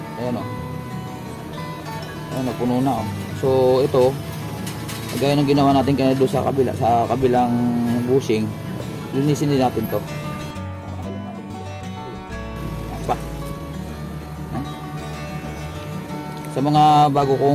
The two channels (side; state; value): both; identical; correlation 1.00